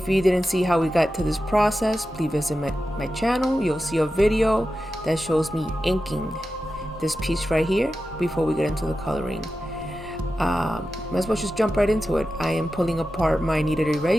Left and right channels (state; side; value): normal; both; correlation 0.92